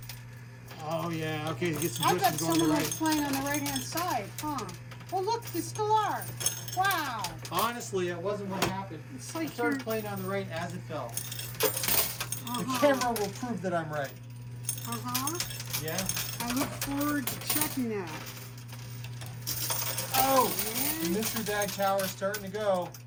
Oh, yeah. Okay, get some I push bet and go on the someone right. was playing on the right-hand side, huh? Well, look, they still are. Wow. Honestly, it wasn't what happened. It's I like started you're... playing on the right as it fell. The Uh-huh. camera will prove that I'm right. Uh-huh. Yeah? I look forward to checking that. Oh! The And... mystery bag tower is starting to go.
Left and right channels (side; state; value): both; identical; correlation 1.00